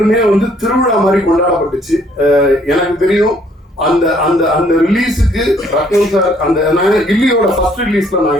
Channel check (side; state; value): both; normal; correlation 0.64